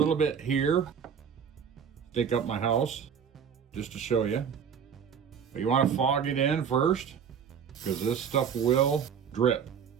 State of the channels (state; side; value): quieter; left; 7.4 dB